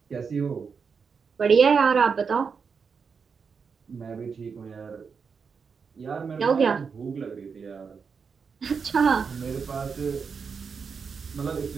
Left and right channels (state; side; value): quieter; left; 5.8 dB